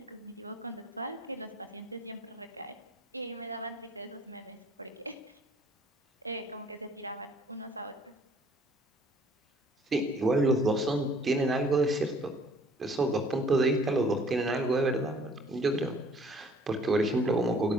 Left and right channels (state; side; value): normal; both; correlation 0.56